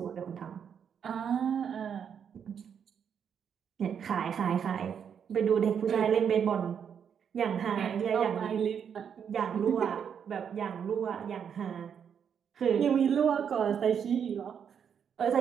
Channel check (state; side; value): quieter; left; 7.7 dB